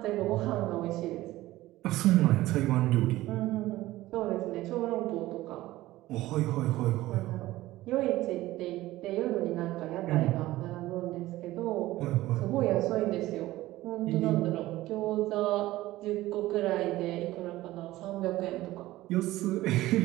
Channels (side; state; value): left; quieter; 16.8 dB